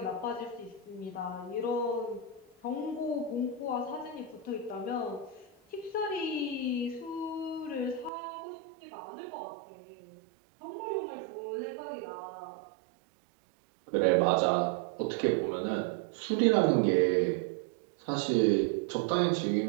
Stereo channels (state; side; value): drops out; left; at 8.1 s